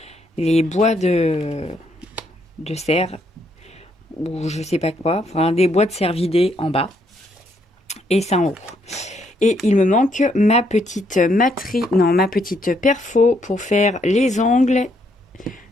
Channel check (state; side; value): normal; both; correlation 0.73